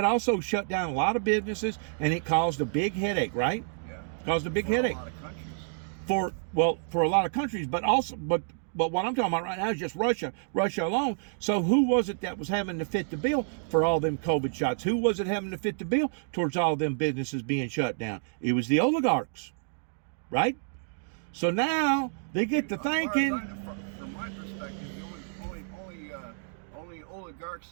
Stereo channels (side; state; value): left; silent; digital silence